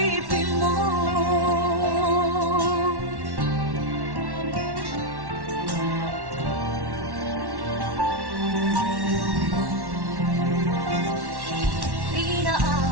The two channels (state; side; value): late; left; 1.1 ms